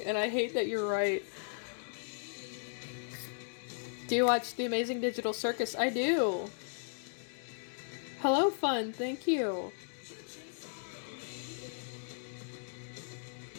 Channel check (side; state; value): right; silent; digital silence